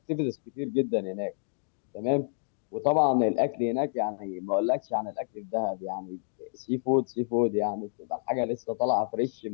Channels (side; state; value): right; silent; digital silence